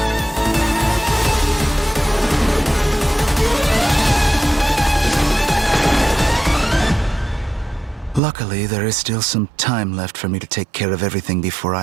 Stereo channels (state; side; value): drops out; left; at 8.2 s